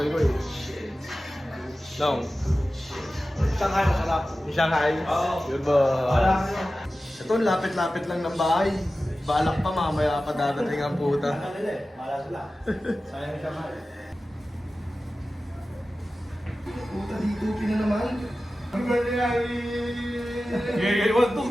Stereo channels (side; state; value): both; normal; correlation 0.95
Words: Nong. Shanghai masarap. Yung Shanghai? Oo. Yun ba? Ito, lapit-lapit lang ng bahay. Balak pa, mamaya pa dadating ang puta. Mala sila. Sayang yung Shanghai. Puta, dito na naman. Happy birthday, Irie! 1,